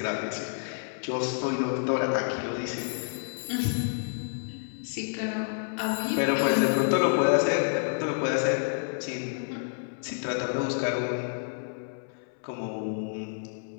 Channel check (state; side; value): silent; right; 59 dB below the other